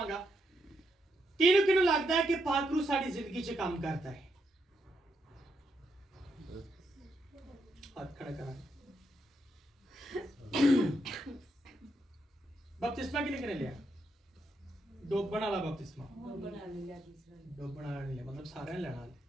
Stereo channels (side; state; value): both; normal; correlation 0.80